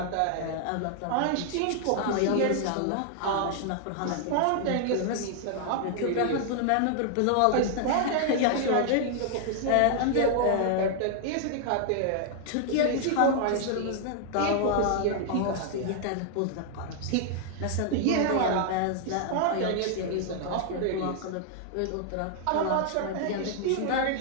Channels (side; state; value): both; different; correlation 0.00